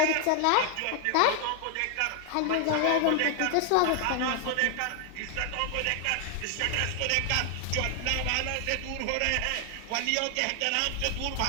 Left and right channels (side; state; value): both; different; correlation 0.00